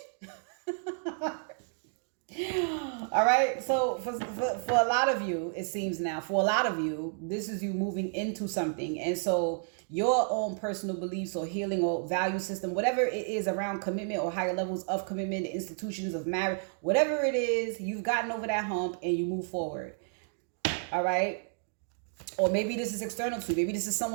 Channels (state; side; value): silent; left; 57 dB below the other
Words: All right. So for a lot of you, it seems now, for a lot of you, this is you moving into something. And so your own personal beliefs or healing or value system, whatever it is around commitment or higher levels of commitment, the institutions of marriage, whatever it is, you've gotten over that hump and you move forward. All right. Or maybe this is external to you. Maybe this is